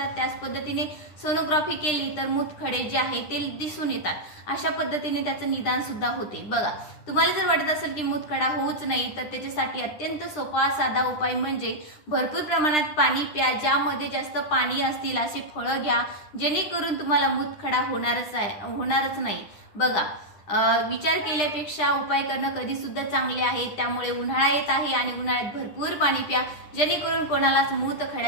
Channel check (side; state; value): right; late; 10 ms